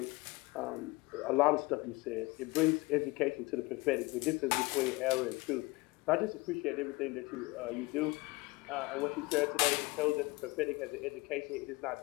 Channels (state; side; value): quieter; right; 23.5 dB